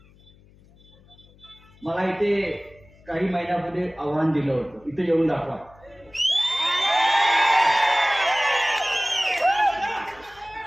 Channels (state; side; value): noise; left; hum, 27 dB below the sound